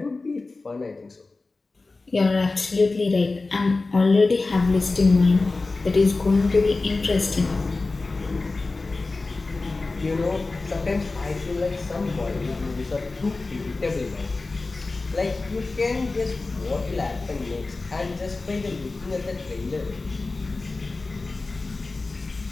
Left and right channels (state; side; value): quieter; right; 3.5 dB